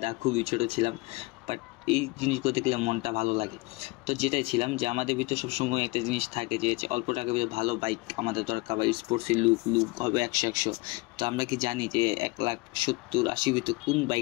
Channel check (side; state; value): right; quieter; 24.2 dB